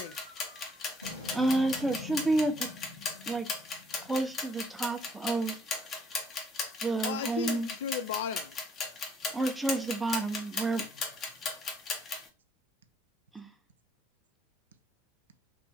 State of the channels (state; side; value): normal; both; correlation 0.67